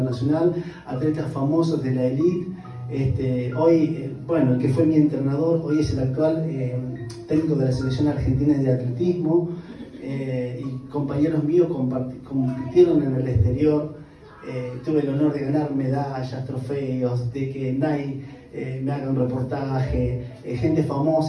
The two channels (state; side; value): identical; both; correlation 1.00